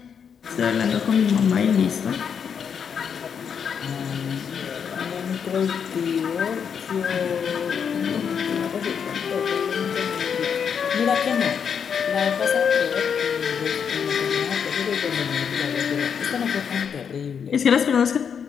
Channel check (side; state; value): right; quieter; 7.2 dB